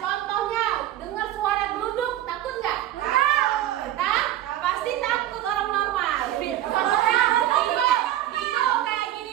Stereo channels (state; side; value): quieter; left; 13.0 dB